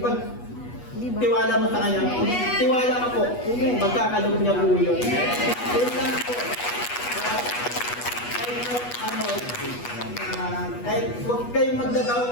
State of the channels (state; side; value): late; right; 8.2 ms